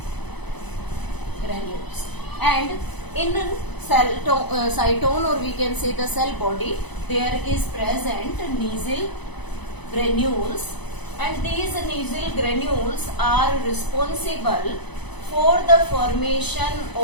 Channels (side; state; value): right; late; 0.99 ms